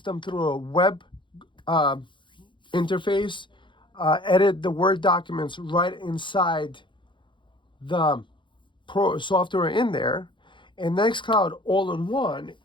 them through a web interface, edit the Word documents right inside the pro software in there. And Nextcloud all-in-one,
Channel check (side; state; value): right; late; 0.23 ms